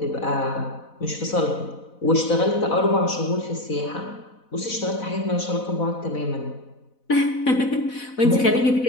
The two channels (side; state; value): right; late; 4.0 ms